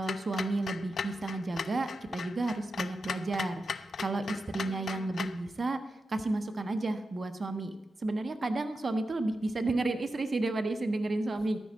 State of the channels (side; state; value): both; normal; correlation 0.90